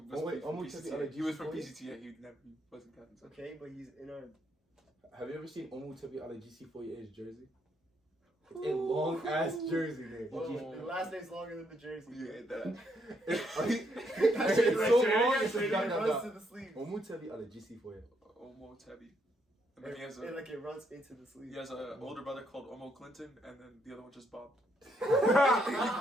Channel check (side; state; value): both; normal; correlation 0.74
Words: Only- from only PCTA. Tevi He was from Allegisi. PCTA. He wasn't Captain Central. Okay, but he's in our. Have you ever seen Omu Tebi out of GC48's jersey? It's a long ass jersey, man. The last name's longer than the jersey. You hate that. It's so long. Say it It runs to the sleeve. Omu Tebi out of GC48. Omo Tebi. And then he has a Like it runs into the sleeve. he has an older brother called Omo Clinton, and then the other one just bobbed.